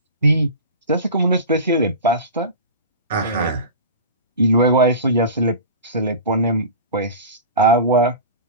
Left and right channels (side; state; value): both; inverted; correlation -0.32